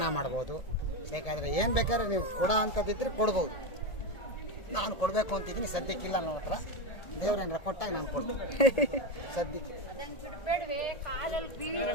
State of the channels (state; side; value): late; right; 1.7 ms